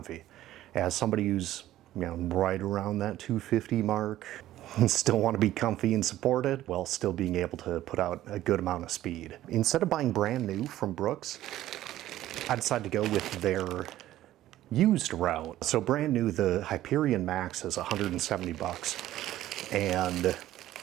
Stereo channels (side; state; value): left; quieter; 14.0 dB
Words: As somebody who's right around that 250 mark, and still want to be comfy and supported while still being able to put out a good amount of speed. Instead of buying brand new from Brooks, I decided to go with their used route. So brand new, the Hyperion Max is 170 bucks and